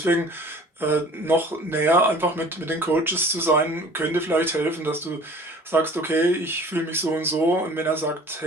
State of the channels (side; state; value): both; normal; correlation 0.47